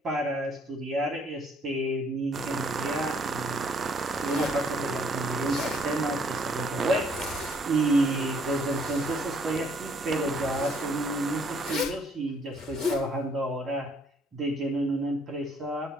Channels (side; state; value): both; normal; correlation 0.64